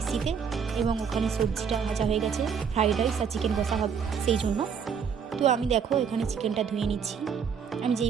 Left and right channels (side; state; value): left; quieter; 6.8 dB